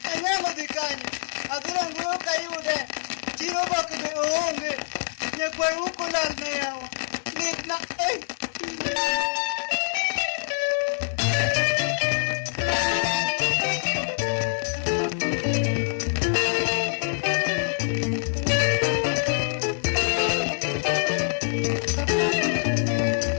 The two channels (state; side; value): silent; right; digital silence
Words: Ayama de kanya. Adura nguyo kayude. Chiro bakbe oonge. Ye kwa uko lalne yawa. Nikna